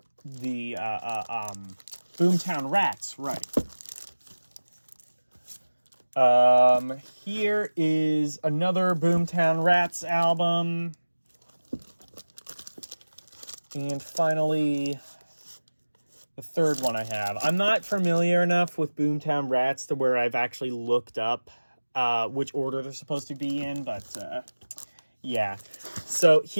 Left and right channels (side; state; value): both; inverted; correlation -1.00